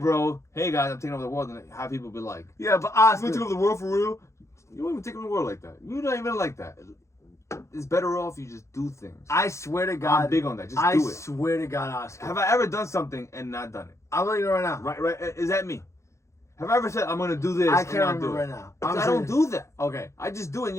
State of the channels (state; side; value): late; right; 0.14 ms